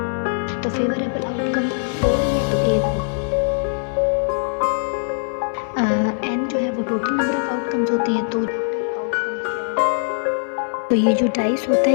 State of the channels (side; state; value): right; silent; 59 dB below the other